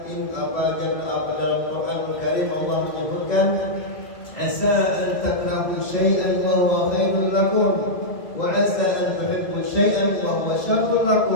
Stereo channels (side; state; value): right; late; 2.0 ms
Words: dalam Quranul Karim Allah menyebutkan asa an takrahu syai'an wa huwa khairul lakum wa asa an tuhibbu syai'an wa huwa syarrul